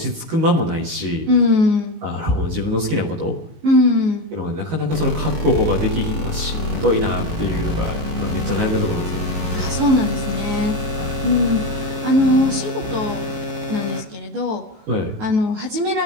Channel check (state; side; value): late; left; 19 ms